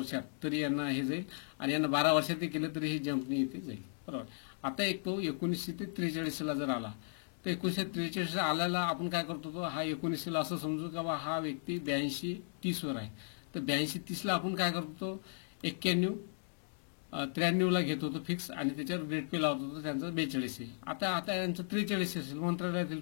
तरी यांना हे जाईल, आणि यांना 12 वर्षात केलं तरी हे जंपनी इथे जाईल. बरोबर. आता एक तो 1943 जर आला, तर 1943 आल्याला आपण काय करतो, तो हा 19 असं समजू का बा हा व्यक्ती 82-30 वर आहे, तर 82-30 आपण काय करतो, 91-93 घेत होतो फिक्स, आणि त्याच्यावर ग्रेड पे लावत होतो, त्यांचं 42 आहे. आता यांचं 43 असेल, मंत्रालयातील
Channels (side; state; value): right; silent; digital silence